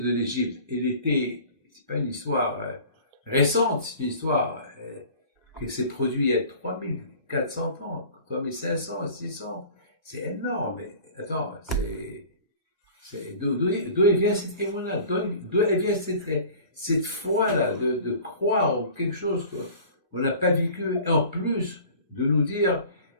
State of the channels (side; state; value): both; inverted; correlation -0.44